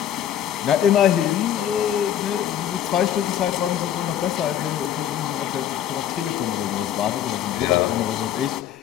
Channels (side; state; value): right; quieter; 10.5 dB